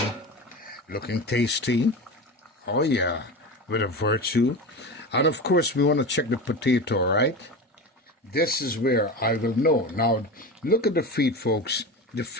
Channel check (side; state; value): both; normal; correlation 0.26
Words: Looking tasty. Oh yeah, with a virtue. And of course we want to check the potato, right? This is where I will know. Now, look at the feet, folks. The